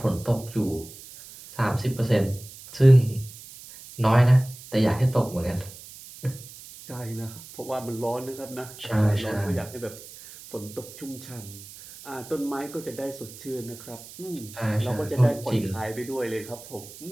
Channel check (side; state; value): right; noise; hiss, 17 dB below the sound